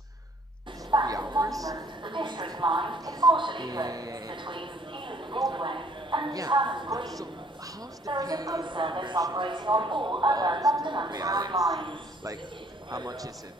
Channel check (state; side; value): normal; both; correlation 0.60